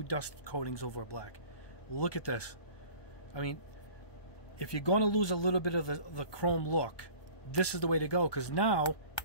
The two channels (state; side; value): late; right; 1.1 ms